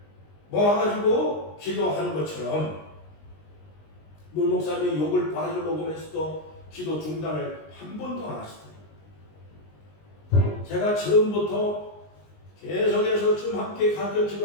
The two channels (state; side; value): late; right; 19 ms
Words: 모아가지고 기도하는 것처럼 문 목사님이 욕을 바가지로 먹으면서도 기도 중단을 한 번도 안 하시더라고요. 제가 처음부터 계속해서 좀 함께 가르쳐